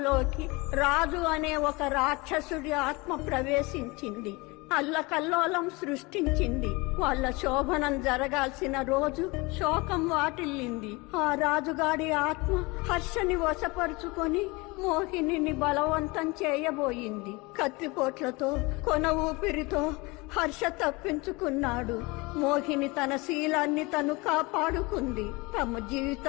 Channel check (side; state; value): right; quieter; 25.1 dB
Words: రాజు అనే ఒక రాక్షసుడి ఆత్మ ప్రవేశించింది. అల్లకల్లోలం సృష్టించింది. వాళ్ళ శోభనం జరగాల్సిన రోజు శోకం వాటిల్లింది. ఆ రాజుగాడి ఆత్మ హర్షని వశపరుచుకొని మోహినిని బలవంతం చేయబోయింది. కత్తిపోట్లతో కొన ఊపిరితో హర్ష తప్పించుకున్నాడు. మోహిని తన శీలాన్ని తను కాపాడుకుంది. తమ